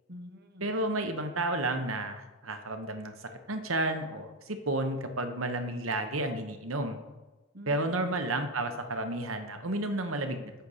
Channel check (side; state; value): both; normal; correlation 0.11